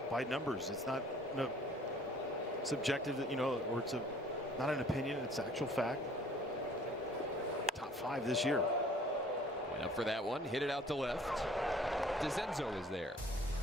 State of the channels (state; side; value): normal; both; correlation 0.53